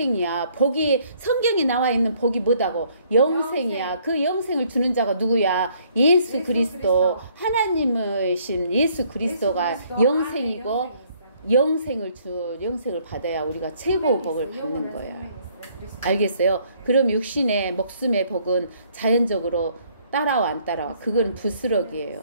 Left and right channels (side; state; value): both; inverted; correlation -0.64